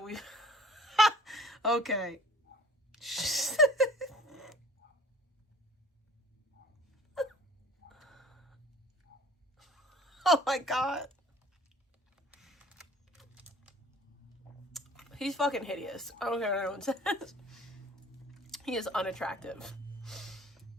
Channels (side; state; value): both; normal; correlation 0.49